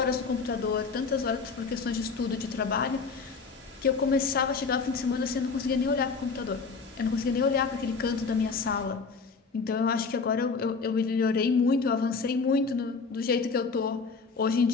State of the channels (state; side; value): quieter; right; 4.8 dB